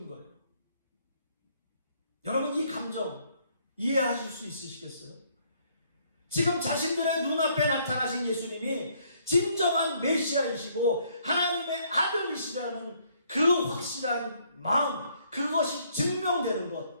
거예요. 여러분, 이 감정 이해하실 수 있으시겠어요? 지금 자신들의 눈앞에 나타나신 예수님이 진정한 메시아이시고 하나님의 아들이시라는 그 확실한 마음, 그것이 증명되는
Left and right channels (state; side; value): inverted; both; correlation -0.67